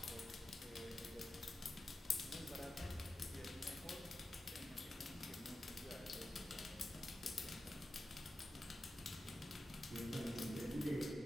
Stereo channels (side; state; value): both; normal; correlation 0.92